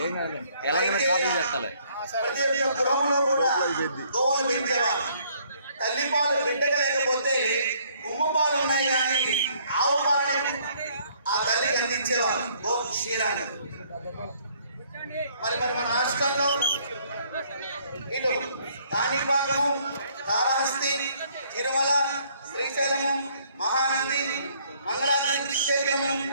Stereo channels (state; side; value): inverted; both; correlation -0.63